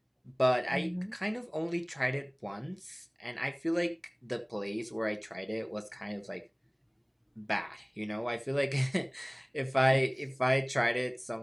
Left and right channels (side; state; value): both; identical; correlation 1.00